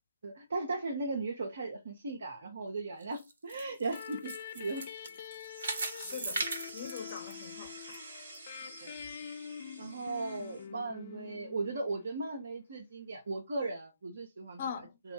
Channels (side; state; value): both; inverted; correlation -0.74